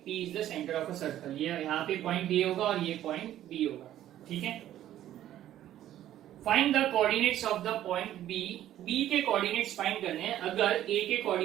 P is the centre of a circle. ये यहाँ पे पॉइंट A होगा और ये पॉइंट B होगा। ठीक है, find the coordinates of the point B। B के कोऑर्डिनेट्स फाइंड करने हैं। अगर A के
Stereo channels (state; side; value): quieter; left; 12.4 dB